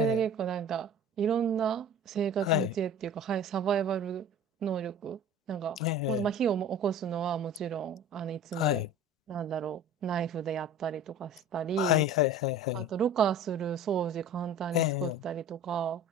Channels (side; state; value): both; normal; correlation 0.41